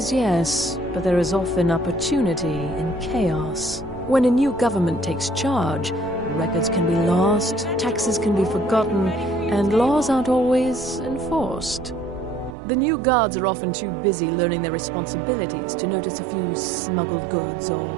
yes, but there is often opportunity in chaos. When a new government takes charge, records can be lost, taxes can be forgotten, and laws aren't always enforced. The new guards are often too busy learning their responsibilities to notice a few smuggled goods or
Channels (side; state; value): left; drops out; at 12.6 s